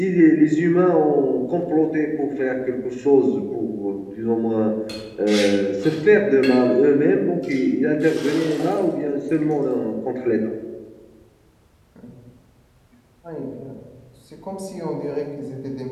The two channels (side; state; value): both; identical; correlation 1.00